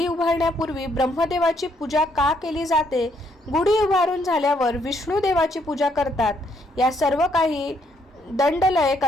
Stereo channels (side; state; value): both; normal; correlation 0.71